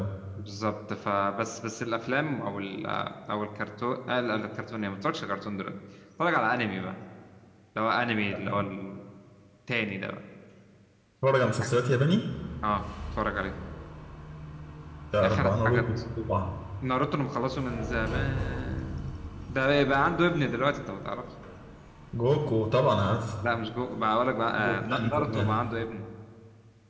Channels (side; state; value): both; identical; correlation 1.00